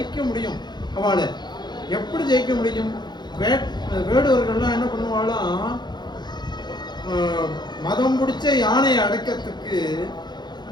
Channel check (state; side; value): late; right; 0.21 ms